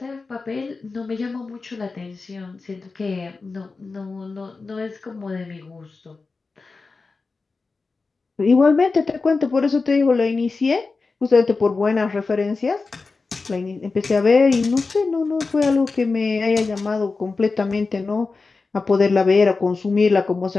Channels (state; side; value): quieter; right; 4.1 dB